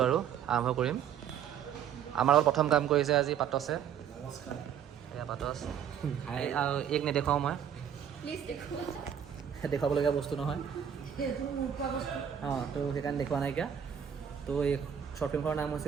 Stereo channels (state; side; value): quieter; left; 8.8 dB